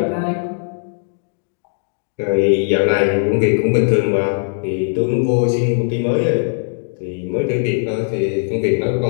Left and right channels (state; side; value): silent; right; digital silence